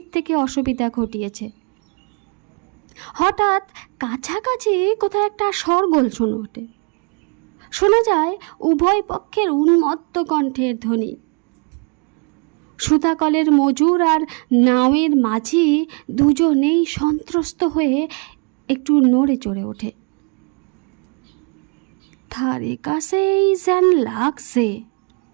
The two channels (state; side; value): quieter; left; 37.9 dB